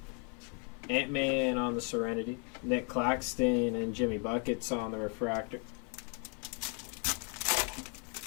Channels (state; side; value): quieter; right; 37.6 dB